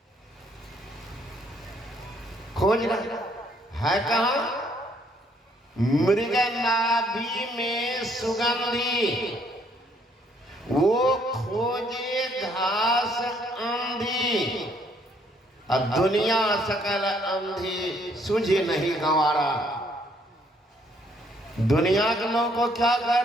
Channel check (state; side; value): normal; both; correlation 0.67